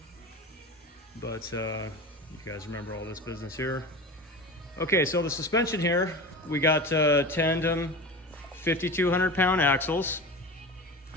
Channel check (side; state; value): both; normal; correlation 0.30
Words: But you guys remember all this business here. Okay, so the suspension here, we got tandem 5,200 pound axles.